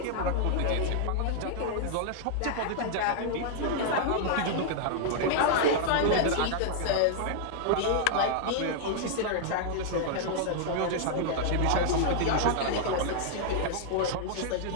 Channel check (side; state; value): both; different; correlation -0.01